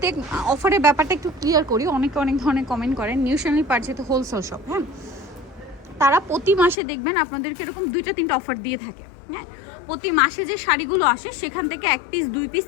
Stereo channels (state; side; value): drops out; right; at 6.8 s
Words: অফারের ব্যাপারটা একটু ক্লিয়ার করি। অনেকে অনেক ধরনের কমেন্ট করেন। নিউ শার্লি পার যেহেতু হোলসেল শপ, হ্যাঁ, তারা প্রতি মাসে দেখবেন আপনাদেরকে এরকম 2-3টা অফার দিয়ে থাকে। হ্যাঁ, প্রতি মাসে যে শাড়িগুলো আসে সেখান থেকে 1 পিস 2 পিস,